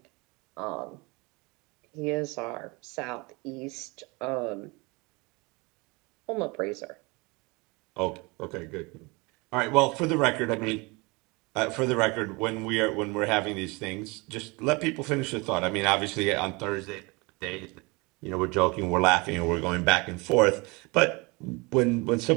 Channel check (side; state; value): left; quieter; 26.6 dB